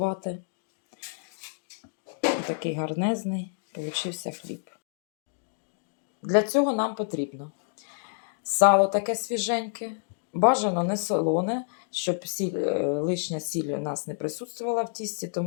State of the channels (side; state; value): right; silent; digital silence